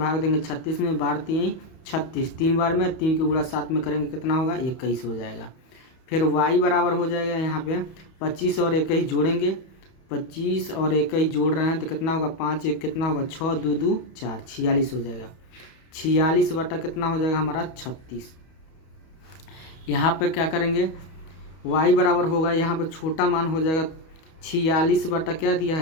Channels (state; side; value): late; right; 31 ms